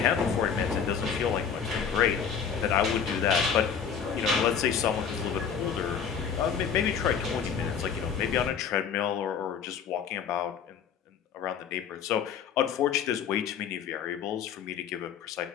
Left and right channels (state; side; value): quieter; right; 7.2 dB